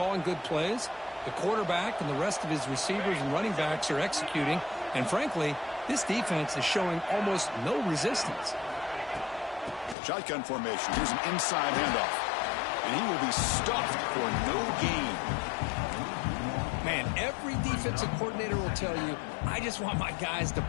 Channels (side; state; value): right; drops out; at 10.0 s